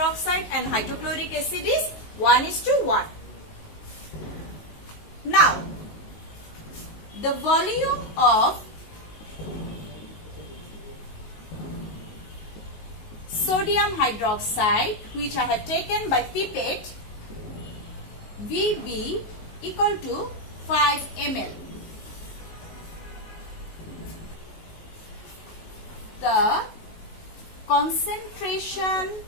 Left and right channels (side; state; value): right; late; 19 ms